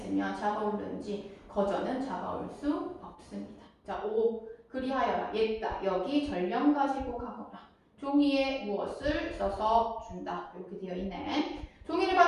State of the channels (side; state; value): both; identical; correlation 1.00